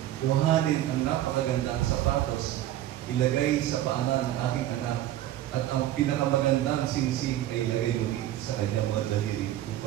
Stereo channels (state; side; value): quieter; left; 13.2 dB